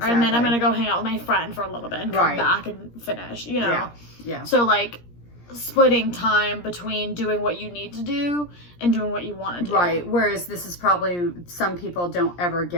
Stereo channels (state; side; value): late; right; 17 ms